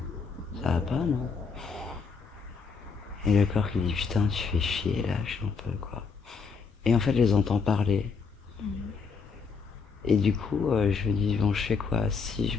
ça va pas non? Et le corps qui dit putain tu fais chier, lâche un peu quoi. Et en fait je les entends parler. Et du coup je me dis bon je fais quoi? Si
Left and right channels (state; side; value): quieter; right; 5.2 dB